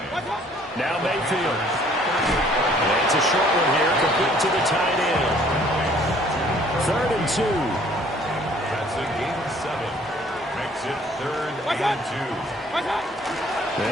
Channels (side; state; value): both; normal; correlation 0.58